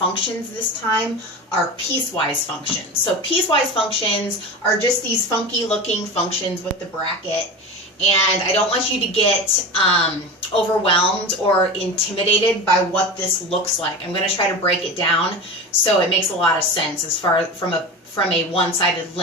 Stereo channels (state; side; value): normal; both; correlation 0.27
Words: this time are piecewise functions. So piecewise functions are just these funky looking functions with the bracket. And I don't want you to get overwhelmed or intimidated by what this looks like. I'm going to try to break it down so it makes a lot of sense as far from a one-sided